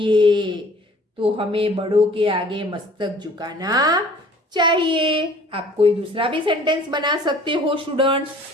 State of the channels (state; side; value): normal; both; correlation 0.51